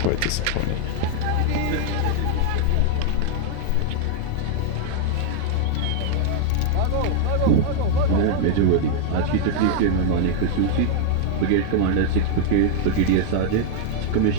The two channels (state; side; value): different; both; correlation 0.00